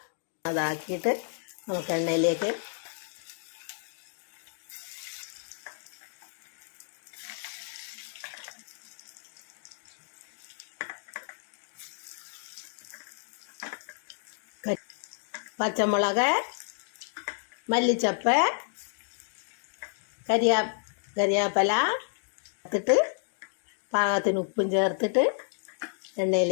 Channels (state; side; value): silent; right; digital silence